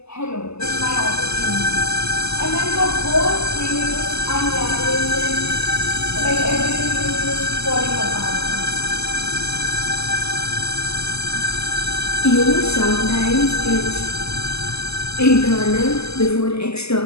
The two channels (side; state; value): right; late; 0.79 ms